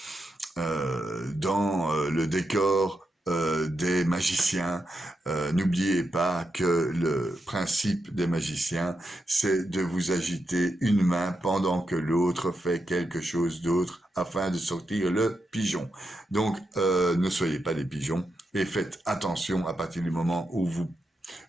le décor des magiciens. N'oubliez pas que le principe des magiciens, c'est de vous agiter une main pendant que l'autre fait quelque chose d'autre afin de sortir le pigeon. Donc, ne soyez pas des pigeons et faites attention à partir du moment où vous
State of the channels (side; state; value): both; normal; correlation 0.85